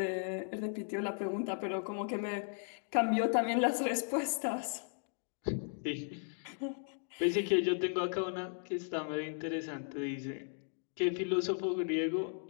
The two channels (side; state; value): right; silent; 54 dB below the other